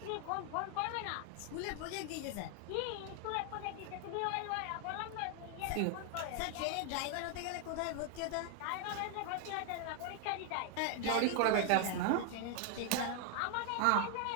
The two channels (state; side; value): different; both; correlation 0.00